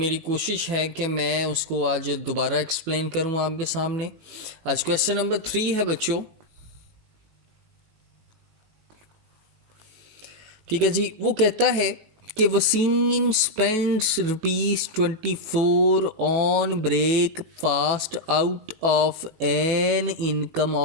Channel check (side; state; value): left; late; 18 ms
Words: कोशिश है कि मैं उसको आज दोबारा एक्सप्लेन करूँ आपके सामने। आज क्वेश्चन नंबर 3 है बच्चों। ठीक है जी, वो कहता है कि Waseem spends ₹24 on breakfast out of an income